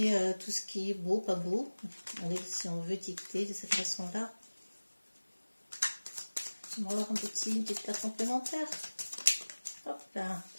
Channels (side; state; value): both; inverted; correlation -1.00